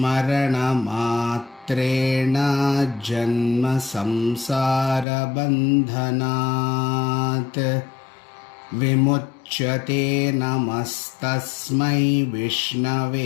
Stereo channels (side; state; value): right; drops out; at 5.1 s